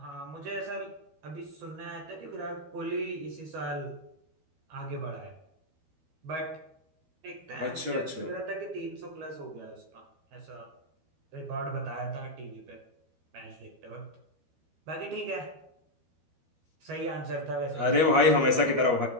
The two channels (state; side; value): late; left; 12 ms